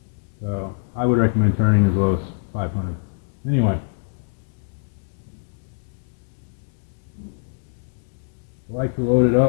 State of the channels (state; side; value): silent; right; digital silence